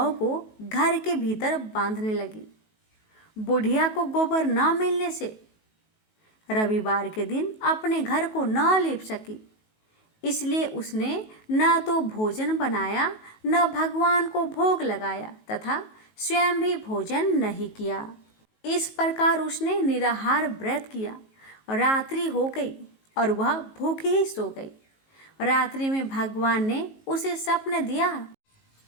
को घर के भीतर बांधने लगी। बुढ़िया को गोबर न मिलने से रविवार के दिन अपने घर को न लीप सकी, इसलिए उसने न तो भोजन बनाया, न भगवान को भोग लगाया तथा स्वयं भी भोजन नहीं किया। इस प्रकार उसने निराहार व्रत किया। रात्रि हो गई और वह भूखी ही सो गई। रात्रि में भगवान ने उसे स्वप्न दिया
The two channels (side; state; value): right; late; 19 ms